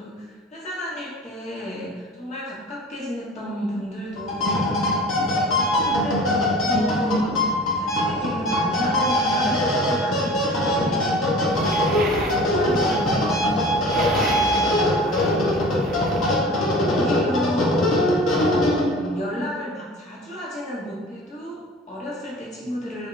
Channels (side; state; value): both; normal; correlation 0.40